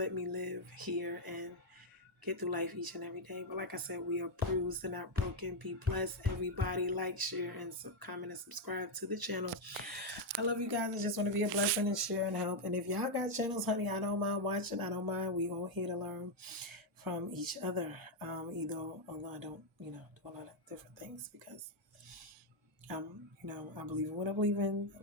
me live here and get through life each and every day. But like I said, we are bruised and not broken. Be blessed, everybody. Like, share, and comment and subscribe to the channel. I love you guys. I just want to be a blessing and share and help. And if y'all got channels, honey, I don't mind watching. I don't mind. We all here to learn from each other. Although I don't, do a lot of different things, because I believe in what I believe in.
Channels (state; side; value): normal; both; correlation 0.01